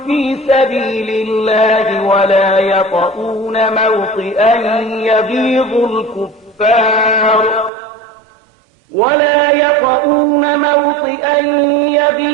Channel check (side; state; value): left; drops out; at 7.7 s